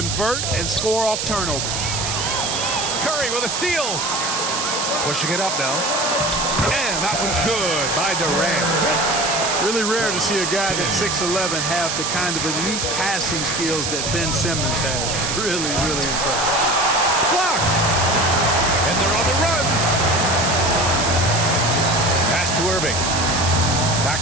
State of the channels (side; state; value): right; noise; hiss, 2 dB below the sound